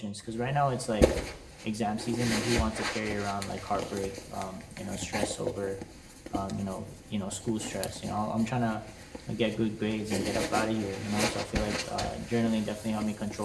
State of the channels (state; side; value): identical; both; correlation 1.00